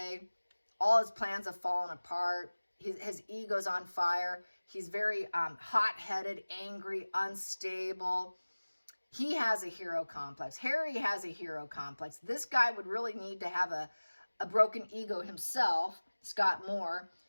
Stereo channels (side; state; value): both; inverted; correlation -1.00